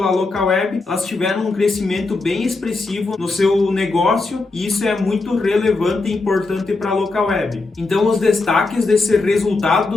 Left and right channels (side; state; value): right; quieter; 3.5 dB